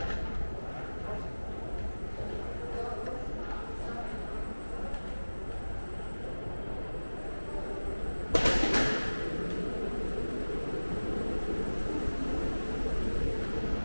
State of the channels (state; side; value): inverted; both; correlation -1.00